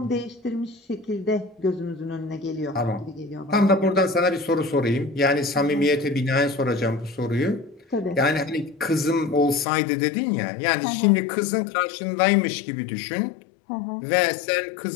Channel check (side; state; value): right; drops out; at 9.7 s